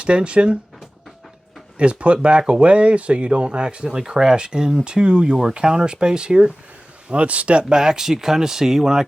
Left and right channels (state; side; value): normal; both; correlation 0.97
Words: is put back away so you don't accidentally crash into your counter space here. Let's step back so you kind of see when I